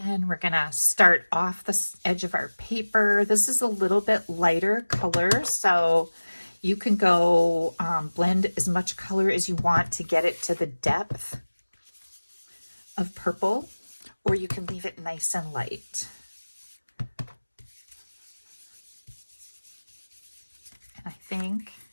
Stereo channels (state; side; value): inverted; both; correlation -1.00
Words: we're gonna start off the edge of our paper. This is a little bit lighter color, so you can go blend as much color as you want to get it to the depth of purple, or you can leave it nice and light. And I think